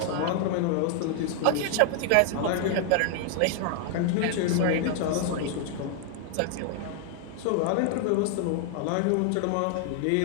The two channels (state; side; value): different; both; correlation 0.00